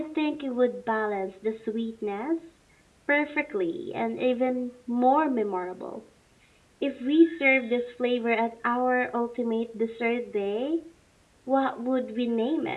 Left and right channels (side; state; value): both; identical; correlation 1.00